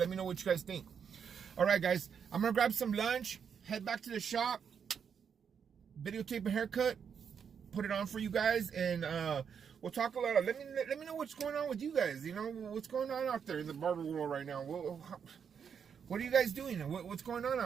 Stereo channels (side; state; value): left; quieter; 7.2 dB